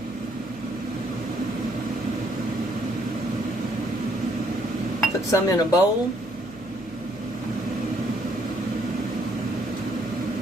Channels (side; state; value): left; noise; hum, 19 dB below the sound